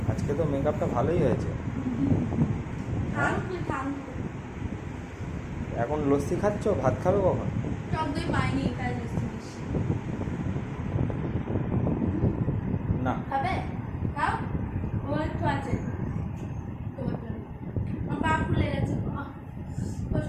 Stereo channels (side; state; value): both; identical; correlation 1.00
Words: আজকে তো মেকআপটা ভালোই হয়েছে। থাম তুই, থাম। এখন লস্যি খাচ্ছ, ভাত খাবে কখন? টক দই পাইনি, তাই লস্যি দিচ্ছি। না। খাবে? খাও। ও একটু আছে তোমার জন্য। আমার পা ফুলে গেছে,